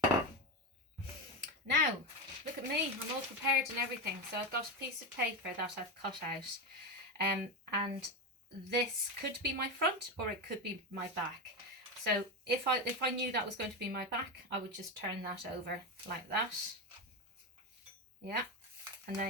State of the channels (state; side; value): normal; both; correlation 0.15